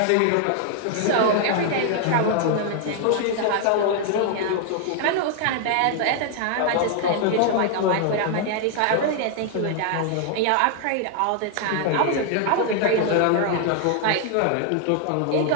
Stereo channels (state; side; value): different; both; correlation 0.00